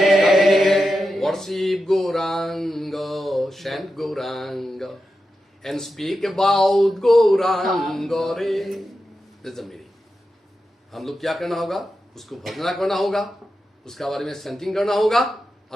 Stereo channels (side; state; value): both; normal; correlation 0.90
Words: worship Gaurang, chant Gaurang and speak about Gaurang रे। That's the meaning। हम लोग क्या करना होगा? उसको भजना करना होगा, उसका बारे में सेंटिंग करना होगा,